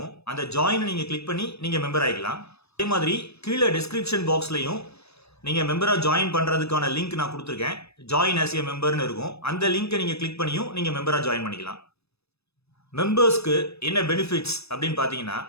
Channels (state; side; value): late; right; 0.79 ms